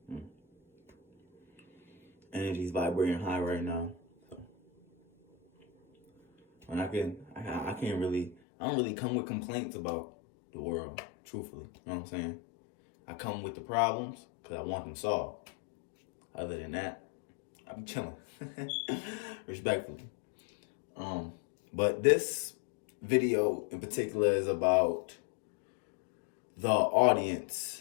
Energy's vibrating high right now. So, and I can't really, I don't really come with complaints about the world, truthfully. You know what I'm saying? I come with the problems because I want them solved. Other than that, I be chilling. Respectfully. But this video in particular is about the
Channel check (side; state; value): right; drops out; at 8.3 s